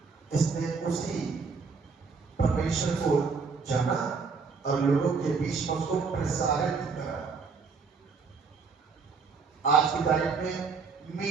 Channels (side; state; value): left; quieter; 4.9 dB